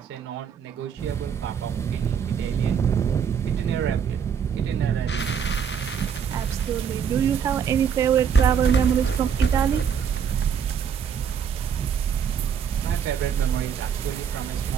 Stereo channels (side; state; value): left; quieter; 7.5 dB